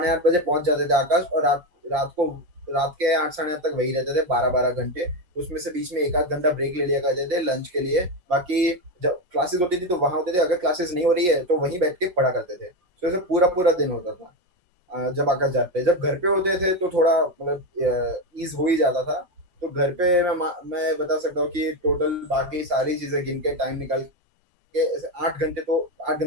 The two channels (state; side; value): late; left; 5.5 ms